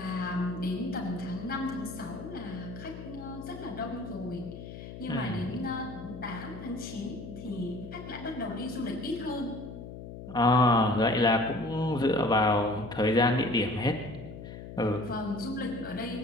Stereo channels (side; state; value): left; noise; hum, 11 dB below the sound